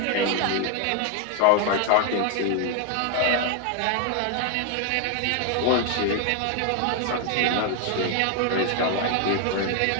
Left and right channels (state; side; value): different; both; correlation 0.01